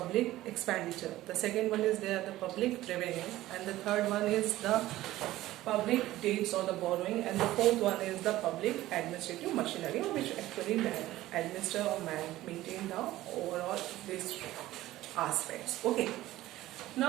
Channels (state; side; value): quieter; left; 15.8 dB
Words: expenditure, the second one is there the public revenue, and the third one is the public debts or the borrowing, and the fourth one is the public administrative machinery, which actually administer or maintain the overall these aspects. Okay.